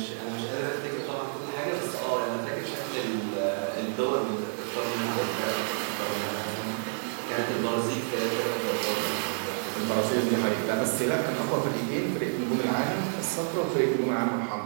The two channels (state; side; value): silent; left; digital silence